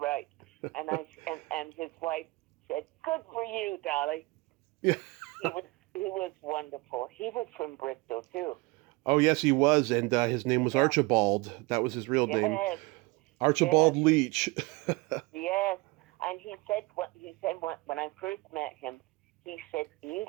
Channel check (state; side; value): quieter; left; 23.7 dB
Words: And and his wife said, good for you, Dolly. Yeah. He was wonderful. He was from Bristol, too. Oh, yes, he was. And his name was Archibald. That was his real name. Archibald Leach. Yes. And he said when I first met him, he said,